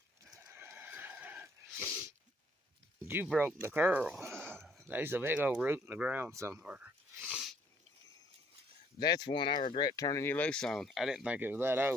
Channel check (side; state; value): both; normal; correlation 0.64